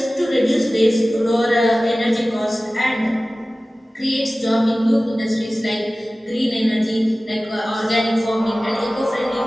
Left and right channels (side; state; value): both; normal; correlation 0.97